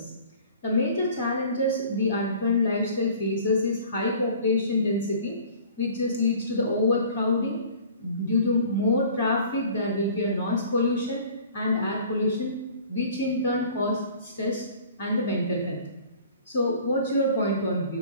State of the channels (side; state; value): both; inverted; correlation -0.48